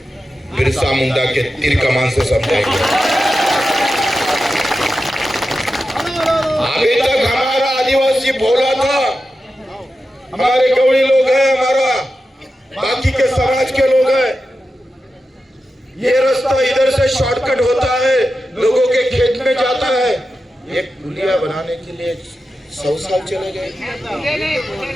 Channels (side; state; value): both; normal; correlation 0.91